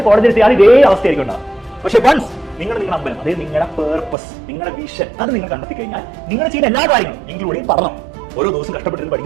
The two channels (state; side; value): drops out; left; at 4.2 s